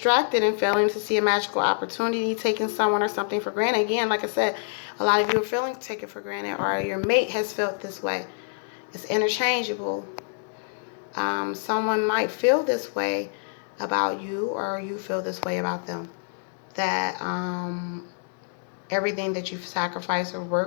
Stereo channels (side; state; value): right; silent; digital silence